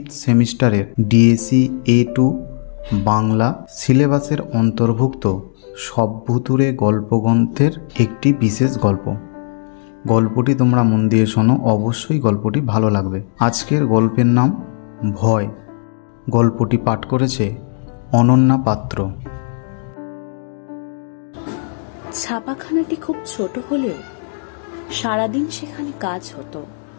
সেমিস্টারের ডিএসি A2 বাংলা সিলেবাসের অন্তর্ভুক্ত সবভুতুড়ে গল্পগ্রন্থের একটি বিশেষ গল্প। গল্পটি তোমরা মন দিয়ে শোনো, অবশ্যই গল্পটি ভালো লাগবে। আজকের গল্পের নাম ভয়। গল্পটি পাঠ করেছে অনন্যা পাত্র। ছাপাখানাটি খুব ছোট হলেও সারাদিন সেখানে কাজ হতো।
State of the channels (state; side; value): silent; right; digital silence